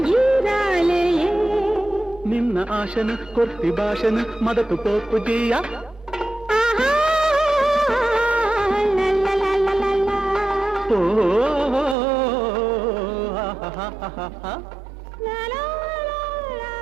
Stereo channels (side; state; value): left; drops out; at 12.0 s